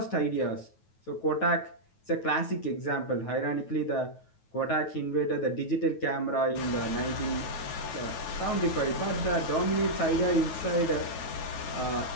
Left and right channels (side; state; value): right; late; 9.3 ms